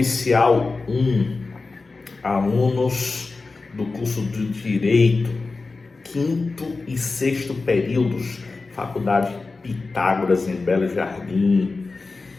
1, alunos do curso de Direito, 5º e 6º períodos, Faculdade Pitágoras em Belo Jardim.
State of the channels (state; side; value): quieter; right; 3.8 dB